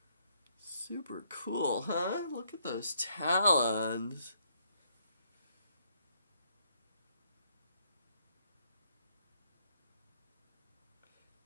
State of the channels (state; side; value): inverted; both; correlation -0.70